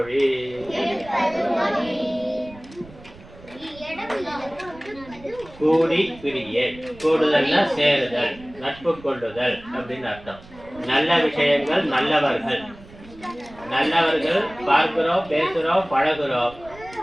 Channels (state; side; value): noise; right; rumble, 20 dB below the sound